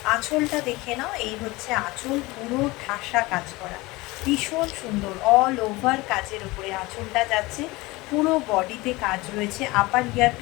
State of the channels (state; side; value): quieter; right; 21.8 dB